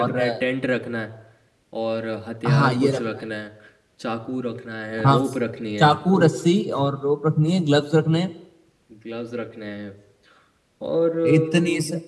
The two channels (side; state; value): both; identical; correlation 1.00